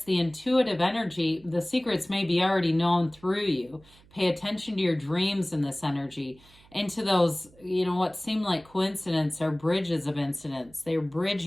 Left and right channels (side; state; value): right; noise; hum, 27 dB below the sound